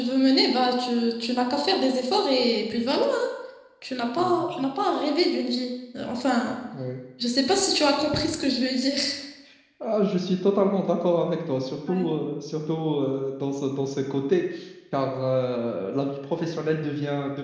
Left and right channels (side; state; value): both; identical; correlation 1.00